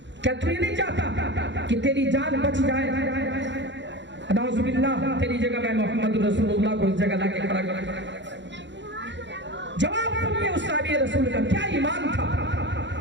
کیا تو یہ نہیں چاہتا کہ تیری جان بچ جائے؟ نعوذ باللہ، تیری جگہ میں محمد رسول اللہ کو اس جگہ لا کے کھڑا کر۔ جواب سنیے اس صحابی رسول کا کیا ایمان تھا۔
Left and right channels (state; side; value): late; left; 0.52 ms